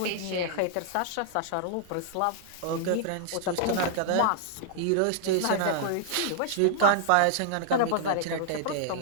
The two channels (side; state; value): both; different; correlation -0.01